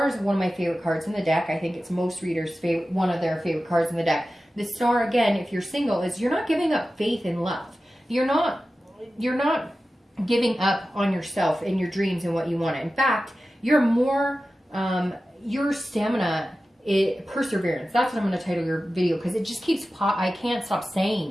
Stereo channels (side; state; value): both; normal; correlation 0.94